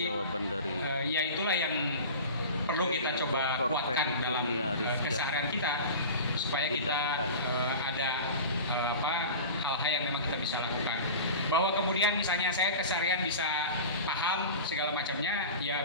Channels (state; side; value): inverted; both; correlation -0.33